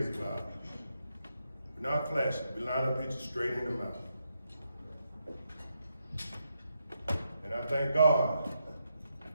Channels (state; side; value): inverted; both; correlation -0.82